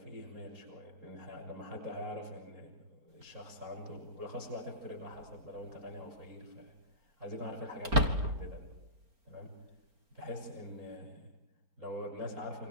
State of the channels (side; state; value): left; late; 4.3 ms